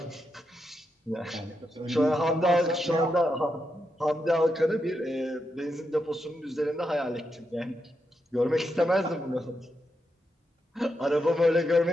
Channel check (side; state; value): both; normal; correlation 0.84